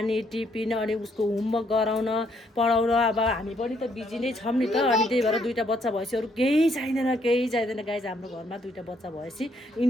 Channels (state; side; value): normal; both; correlation 0.70